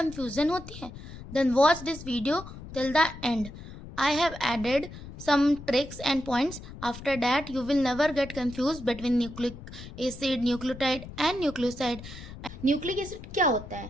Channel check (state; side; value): noise; left; rumble, 14 dB below the sound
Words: होती है? Then watch this video till the end. I have added some tricks and points. After that, you will never get confused between nucleic acid, nucleotide and nucleoside. Nucleic acid क्या होता है?